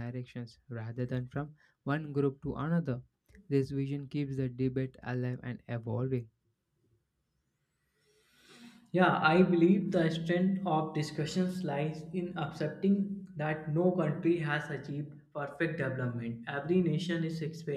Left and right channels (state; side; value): identical; both; correlation 1.00